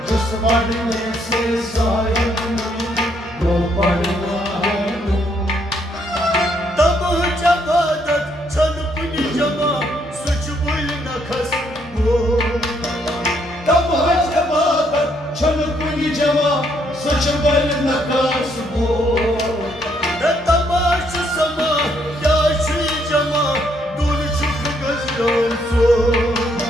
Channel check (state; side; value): normal; both; correlation 0.71